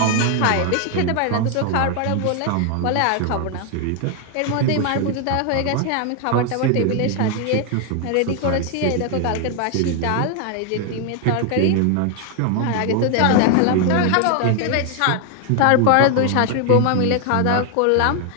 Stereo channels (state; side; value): different; both; correlation 0.00